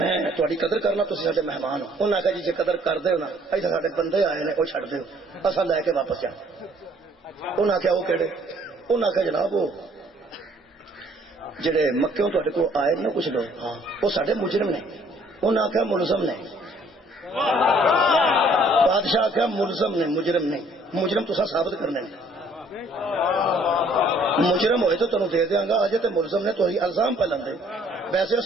تھوڑی قدر کرنا تھی سارے مہمان ہو انہیں آخیا جی قدر کر دو نا ایسا سارے بندے آئے نے وہ چڑھ دو اصل لے کے واپس جا انہیں آخیا وہ کہڑے انہیں آخیا جناب وہ جڑے مکیوں تے کو آئے نا کچھ لوگ ہاں وہ سارے مجرم نے انہیں آخیا ملزم نے بادشاہ آخیا ملزم نے مجرم نہیں مجرم تو ثابت کرنے مجرم ہوئے تو تمہیں دے دیاں گا اجے تے ملزم نے تو الزام پہ لندے ویسے وہ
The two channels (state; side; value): normal; both; correlation 0.60